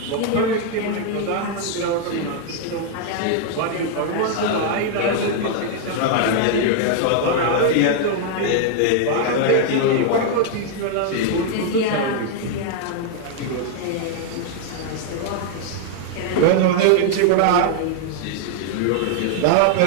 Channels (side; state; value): both; different; correlation 0.00